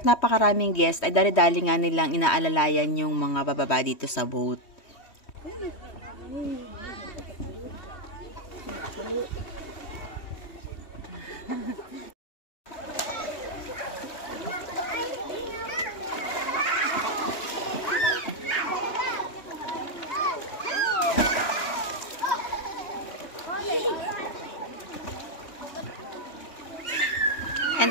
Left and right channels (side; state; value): right; late; 3.1 ms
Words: napakaraming guest ay dali-dali nga nilang inaalalayan yung mga bababa dito sa boat. And